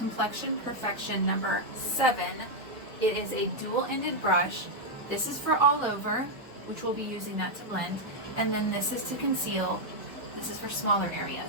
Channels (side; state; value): both; normal; correlation -0.01